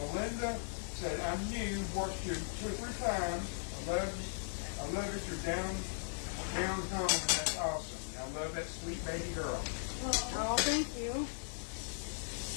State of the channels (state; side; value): silent; right; digital silence